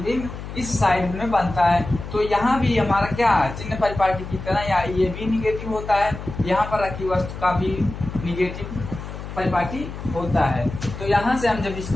इस साइड में बनता है, तो यहाँ भी हमारा क्या है, चिन्ह परिपाटी की तरह या ये भी निगेटिव होता है, यहाँ पर रखी वस्तु का भी निगेटिव परिपाटी होता है। तो यहाँ से हम जब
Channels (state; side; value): noise; left; hum, 10 dB below the sound